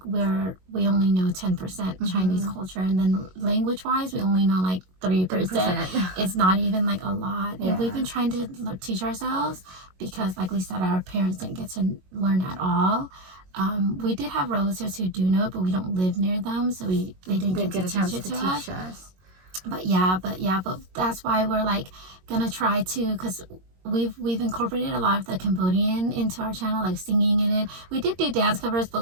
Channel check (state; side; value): late; left; 22 ms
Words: we only know 10% Chinese culture, and then language wise, we only know like 3%. It's not even like a lot. And we've been trying to teach ourselves, because like we said, our parents didn't get to learn at all. We did have relatives who do know it, but we don't live near them, so they didn't get a chance to teach us. But that's why we're like gonna try to, because we've incorporated a lot of the Cambodian into our channel, like singing in it. We did do dance covers, but